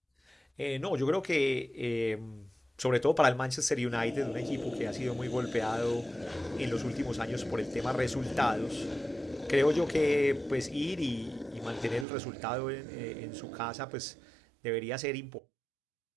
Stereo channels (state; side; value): drops out; left; at 12.1 s